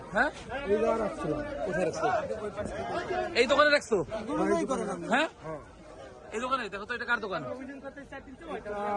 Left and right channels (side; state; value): both; identical; correlation 1.00